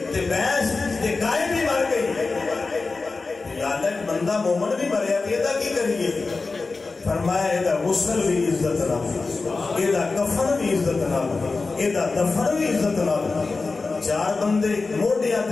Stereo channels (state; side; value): quieter; right; 3.9 dB